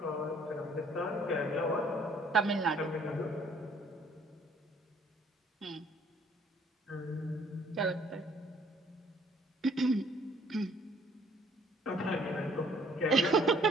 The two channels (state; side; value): normal; both; correlation 0.59